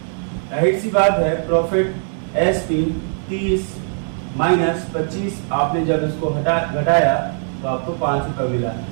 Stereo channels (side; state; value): left; silent; 59 dB below the other